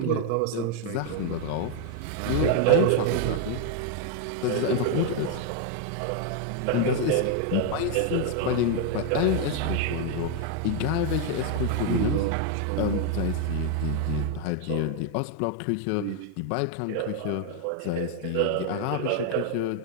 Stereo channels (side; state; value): both; different; correlation 0.01